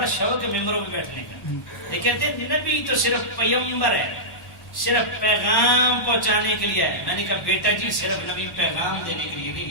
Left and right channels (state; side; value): late; right; 1.1 ms